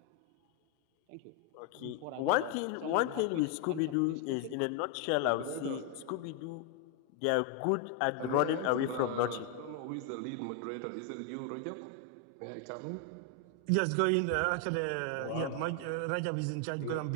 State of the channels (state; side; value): different; both; correlation 0.01